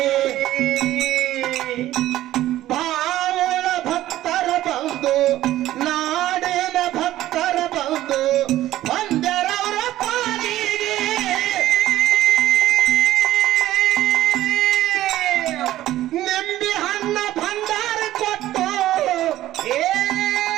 ಬಾವುಳ ಭಕ್ತರ ಬಂದು, ನಾಡಿನ ಭಕ್ತರ ಬಂದು ಒಂದರವರ ಪಾಲಿಗೆ. ನಿಂಬಿ ಹಣ್ಣ ಭಂಡಾರ ಕೊಟ್ಟು,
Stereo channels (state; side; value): quieter; left; 14.3 dB